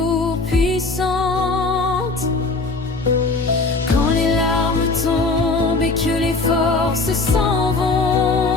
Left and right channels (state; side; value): quieter; right; 3.6 dB